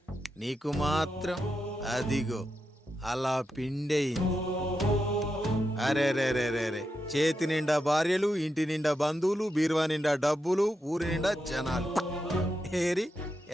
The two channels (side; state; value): both; normal; correlation 0.86